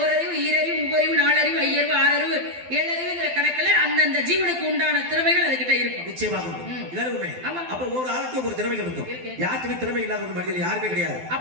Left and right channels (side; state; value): left; late; 12 ms